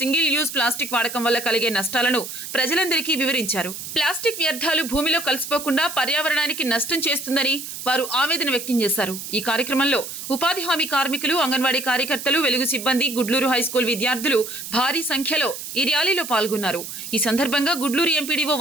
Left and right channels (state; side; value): noise; right; hiss, 9 dB below the sound